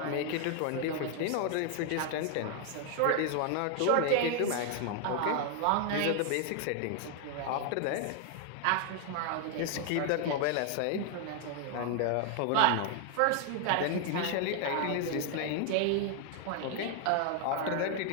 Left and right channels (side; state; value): both; different; correlation 0.00